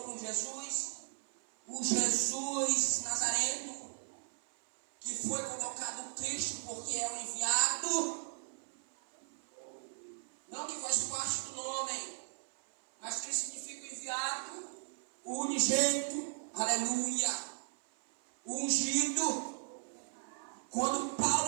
com Jesus? O Jesus Nazareno, que foi colocado Cristo porque é o enviado, não que faz parte do nome, mas que significa o enviado, o unigênito, aleluia, o ungido. Quando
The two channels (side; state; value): left; silent; 53 dB below the other